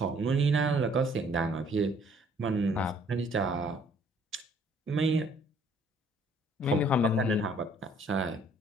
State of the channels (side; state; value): both; normal; correlation 0.60